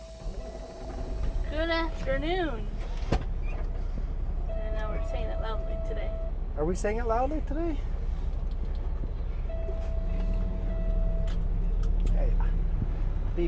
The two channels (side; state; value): both; identical; correlation 1.00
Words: Good afternoon. And now we're saying it loudly today. Are we saying it loudly today? Hey,